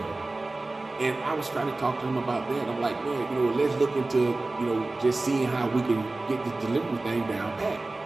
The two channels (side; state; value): left; quieter; 3.1 dB